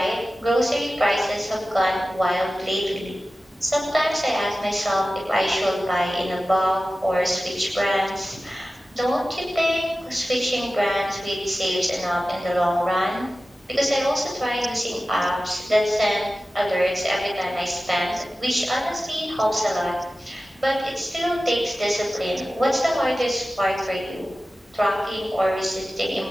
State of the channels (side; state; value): both; normal; correlation 0.95